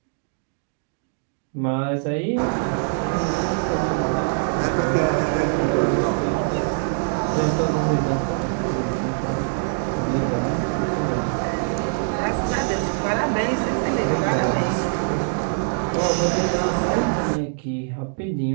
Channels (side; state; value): left; silent; digital silence